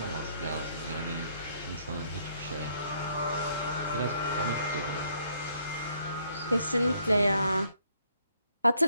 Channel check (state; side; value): inverted; both; correlation -0.68